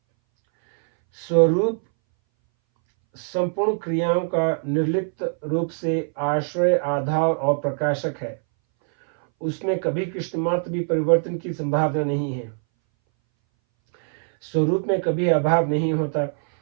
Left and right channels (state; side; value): silent; left; 61 dB below the other